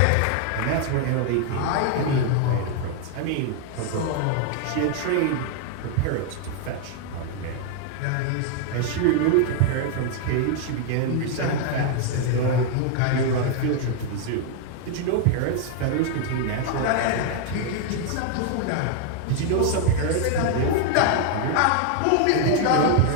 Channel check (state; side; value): different; both; correlation 0.00